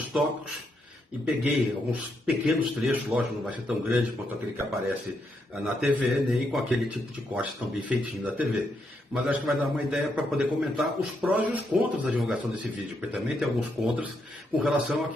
tópicos e peguei alguns pequenos trechos, lógico, não vai ser tão grande quanto aquele que aparece na TV, nem com aquele tipo de corte tão bem feitinho da TV. Mas acho que vai dar uma ideia para poder comentar os prós e os contras da divulgação desse vídeo, porque também tem alguns contras com relação a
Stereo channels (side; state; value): both; normal; correlation 0.79